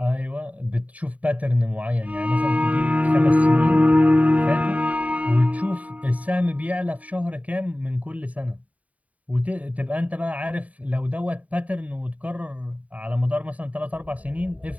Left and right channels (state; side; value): late; left; 0.069 ms